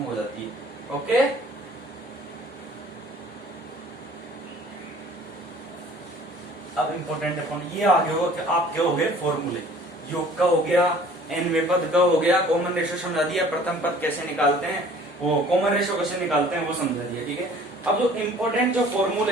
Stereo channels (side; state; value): both; normal; correlation 0.51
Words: हो जाती है। ओके, अब इंपॉर्टेंट अपॉन ये आगे होगा कि आपके हो गए फॉर्मूले, योग का हो गया, एनवे पद का हो गया, कॉमन रेशियो समझा दिया, प्रथम पद कैसे निकालते हैं, वो कॉमन रेशियो कैसे निकालते हैं वो समझा दिया। ठीक है, अब जो इंपॉर्टेंट जो